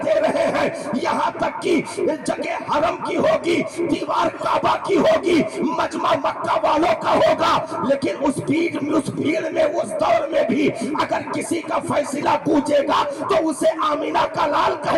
رہے ہیں۔ یہاں تک کہ جگہ حرم کی ہوگی، دیوار کعبہ کی ہوگی، مجمع مکہ والوں کا ہوگا، لیکن اس بھیڑ میں اس دور میں بھی اگر کسی کا فیصلہ گونجے گا تو اسے آمینہ کا لال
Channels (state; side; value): identical; both; correlation 1.00